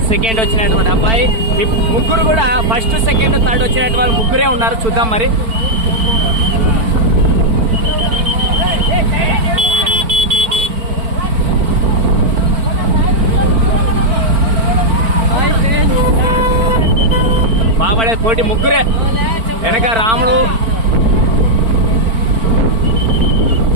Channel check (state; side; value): late; left; 4.4 ms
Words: సెకండ్ వచ్చినటువంటి అబ్బాయి, ముగ్గురు కూడా ఫస్ట్, సెకండ్, థర్డ్ వచ్చినటువంటి వాళ్ళు ముగ్గురే ఉన్నారు. చూద్దాం మరి. బాబడే పోటీ ముగ్గురే. వెనక రాముడు,